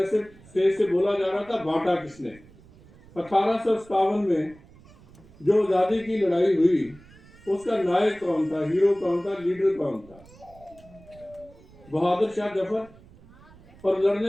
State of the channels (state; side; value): noise; right; rumble, 24 dB below the sound